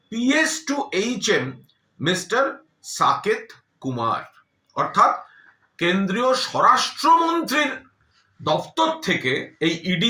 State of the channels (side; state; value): both; identical; correlation 1.00